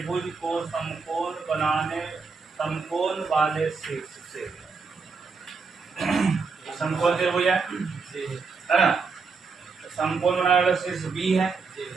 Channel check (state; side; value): quieter; left; 4.8 dB